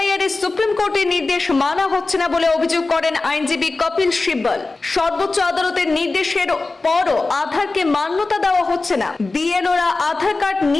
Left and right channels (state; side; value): quieter; right; 3.5 dB